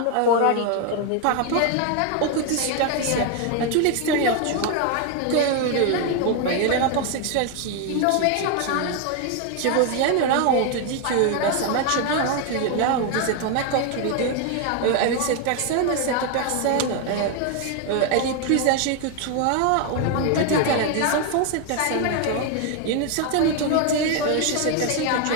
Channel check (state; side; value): different; both; correlation 0.01